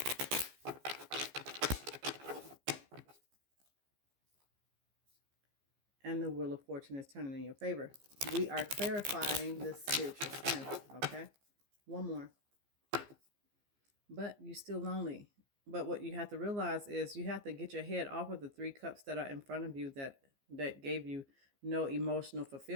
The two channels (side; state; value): left; late; 15 ms